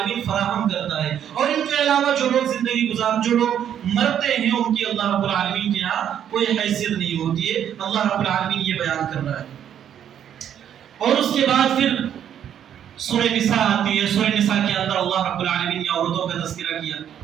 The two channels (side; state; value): left; quieter; 9.6 dB